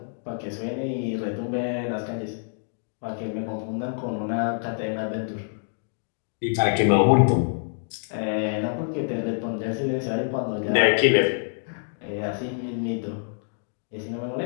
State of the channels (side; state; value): right; silent; digital silence